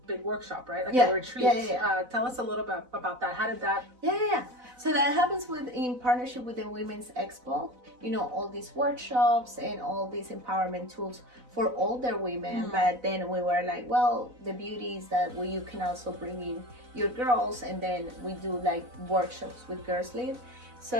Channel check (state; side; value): late; left; 4.0 ms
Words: workshop, right? Like a retreat. Tell us a little bit about that. How did that? So that happens in partnership with the Women's Expo. All these workshops and all these empowerment tools for older women. But then we were like, well, the beauty is that you can also bring in your girls, and then we do like workshops with Girls Lead.